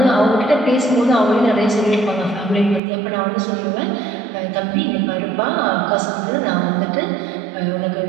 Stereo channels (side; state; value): left; drops out; at 2.8 s